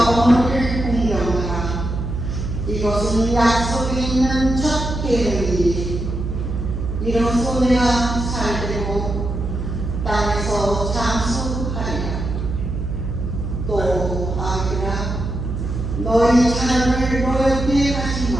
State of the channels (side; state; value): right; noise; hum, 4 dB below the sound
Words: 어머니를 공경하라. 이것은 약속이 있는 첫 계명이니 이로써 내가 살되고 땅에서 장수하리라. 또 아기라, 너희 자녀를 노엽게 하지